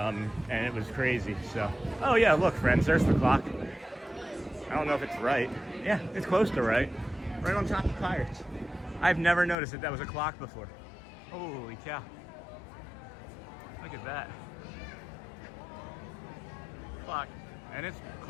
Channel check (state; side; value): drops out; right; at 9.6 s